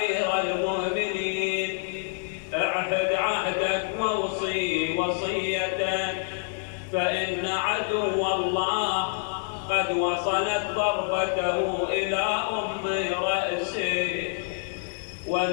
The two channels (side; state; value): right; silent; digital silence